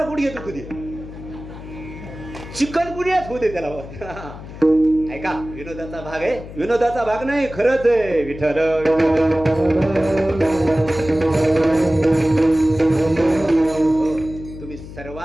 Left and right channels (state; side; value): noise; left; hum, 13 dB below the sound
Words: गुडघे दुखू दे. चिकन गुन्ह्याच होऊ दे त्याला. ऐका, विनोदाचा भाग आहे. विनोदाचा भाग नाही, खरंच आहे. विठ्ठल तुम्ही